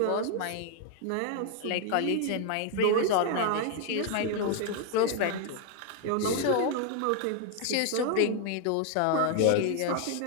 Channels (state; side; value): different; both; correlation 0.00